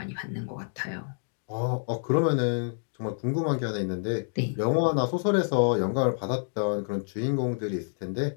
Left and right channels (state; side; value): silent; right; digital silence